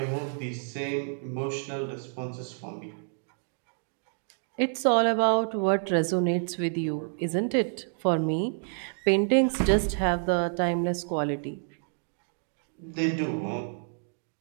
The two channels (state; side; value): silent; left; 59 dB below the other